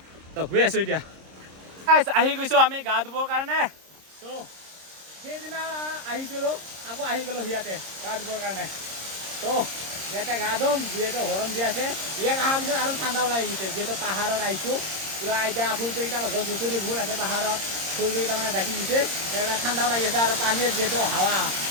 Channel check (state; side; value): late; left; 26 ms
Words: তো গৈ আছোঁ এতিয়া আহি গৈছোঁ আমি গা ধুবৰ কাৰণে তো সেইদিনা আহিছিলোঁ আকৌ আহি গ'লোঁ ইয়াতে গা ধুবৰ কাৰণে তো ইয়াতে গা ধুম যিহেতু গৰম দি আছে ইয়াত অহাৰ পিছত আৰু ঠাণ্ডাও লাগি গৈছে যিহেতু পাহাৰত আহিছোঁ পুৰা এতিয়া ফুলকেইটা গছ গছনিবোৰ আছে পাহাৰত ফুলকেইটা মানে ঢাকি দিছে সেইকাৰণে ঠাণ্ডাও লাগি আছে আৰু পানীৰ যিহেতু হাৱা